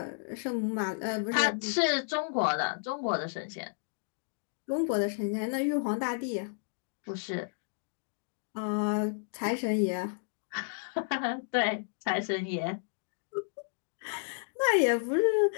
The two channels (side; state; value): right; silent; digital silence